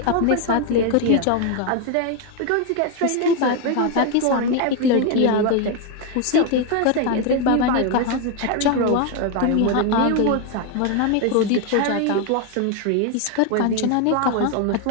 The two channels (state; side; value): different; both; correlation 0.01